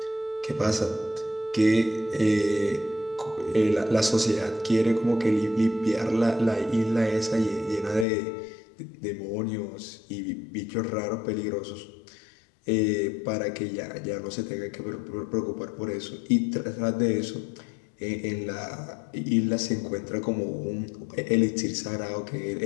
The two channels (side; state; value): right; drops out; at 8.1 s